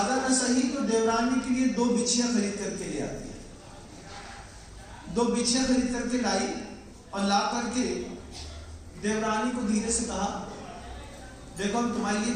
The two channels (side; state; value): both; identical; correlation 1.00